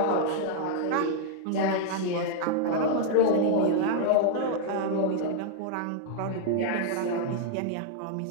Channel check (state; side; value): different; both; correlation -0.01